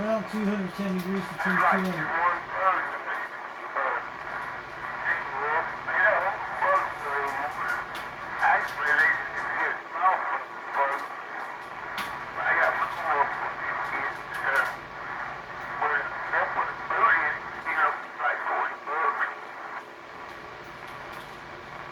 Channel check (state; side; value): identical; both; correlation 1.00